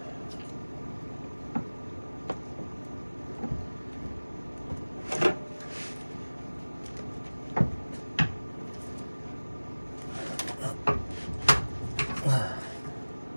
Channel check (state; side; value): inverted; both; correlation -1.00